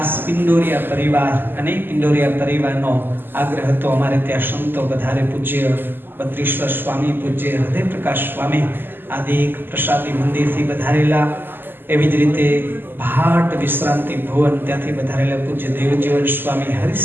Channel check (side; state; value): left; late; 0.096 ms